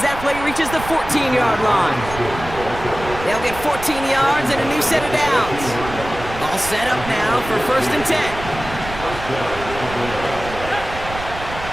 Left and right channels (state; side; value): noise; right; rumble, 11 dB below the sound